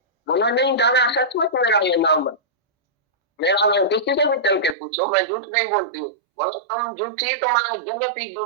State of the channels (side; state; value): left; drops out; at 4.8 s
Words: बोला नहीं दादा सच में मेरा ये नाम है, मेरा नाम किसी से भी चल के पूछो, मैं झूठ नहीं बोलती हूँ। बोला तुम झूठी, तुम्हारा जगत ही